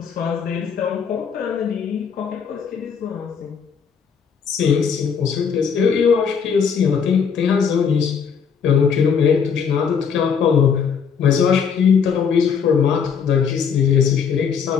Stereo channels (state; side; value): quieter; right; 6.7 dB